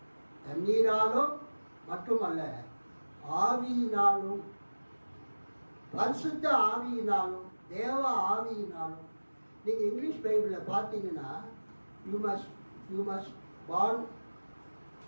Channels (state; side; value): inverted; both; correlation -1.00